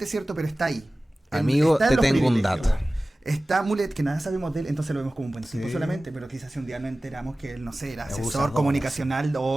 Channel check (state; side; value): normal; both; correlation 0.97